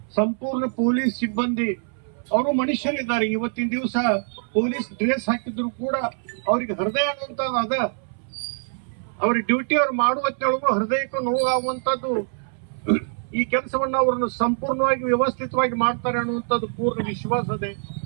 ಸಂಪೂರ್ಣ ಪೊಲೀಸ್ ಸಿಬ್ಬಂದಿ ಅವರು ಮನುಷ್ಯರಿದ್ದಾರೆ. ಇವತ್ತಿನ ದಿವಸ ಪೊಲೀಸ್ ಡ್ರೆಸ್ ಹಾಕಿದ್ರು ಕೂಡ ಅವ್ರಿಗೆ ಹೃದಯ ಆಗುವಂತದ್ದು ಅದ. ಅವ್ರ ಡ್ಯೂಟಿ ಅವ್ರು ಮಾಡುವತ್ತೊಳಗೂ ಹೃದಯಕ್ಕೂ ನೋವಾಗುವಂತದ್ದು. ಈ ಕೆಲಸವನ್ನ ಅವ್ರನ್ನ ಸಂಪೂರ್ಣವಾಗಿ ವ್ಯವಸ್ಥಿತವಾಗಿ ಮಾಡ್ತಾರೆ ಅನ್ನುವಂಥದ್ದು ಪೂರ್ಣ ವಿಶ್ವಾಸ ಇದೆ.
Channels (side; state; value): left; silent; 62 dB below the other